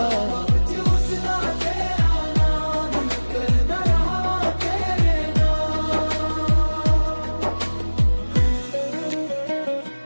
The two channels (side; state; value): both; inverted; correlation -1.00